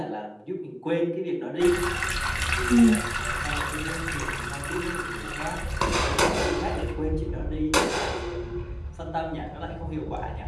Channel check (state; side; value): identical; both; correlation 1.00